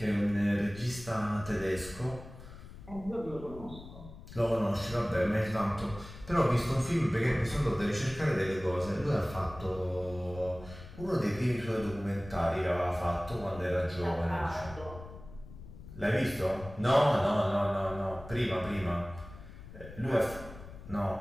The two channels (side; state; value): left; noise; rumble, 15 dB below the sound